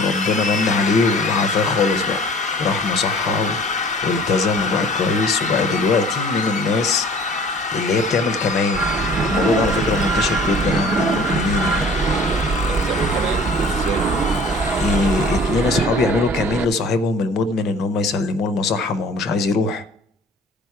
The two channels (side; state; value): both; normal; correlation 0.48